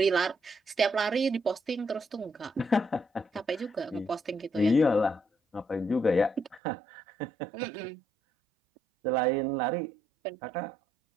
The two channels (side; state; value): left; drops out; at 6.6 s